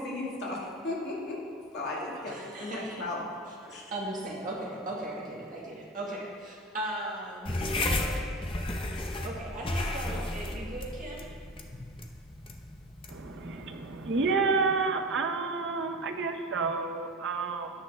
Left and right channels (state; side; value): normal; both; correlation 0.31